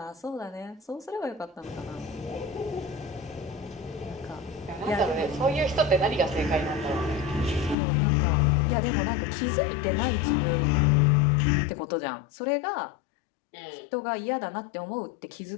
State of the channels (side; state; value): right; drops out; at 7.8 s